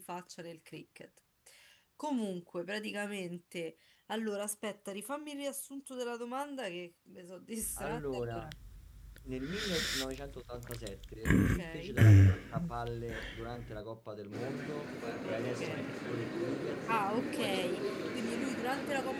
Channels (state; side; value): identical; both; correlation 1.00